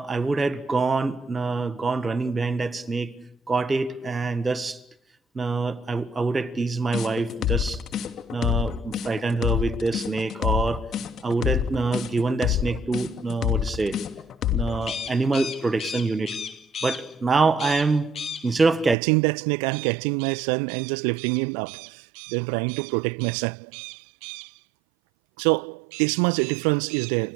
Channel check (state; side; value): drops out; left; at 18.9 s